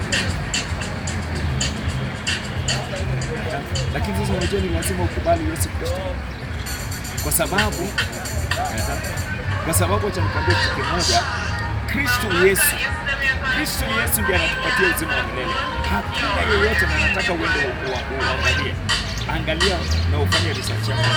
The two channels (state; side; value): identical; both; correlation 1.00